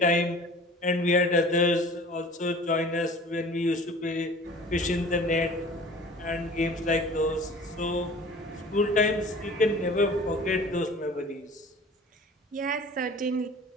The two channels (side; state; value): both; normal; correlation 0.44